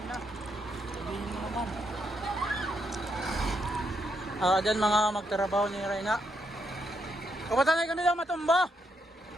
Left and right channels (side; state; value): both; normal; correlation 0.78